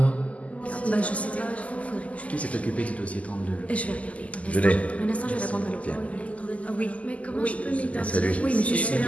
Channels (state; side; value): late; right; 0.069 ms